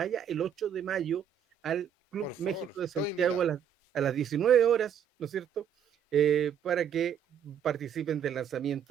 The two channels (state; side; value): quieter; left; 8.4 dB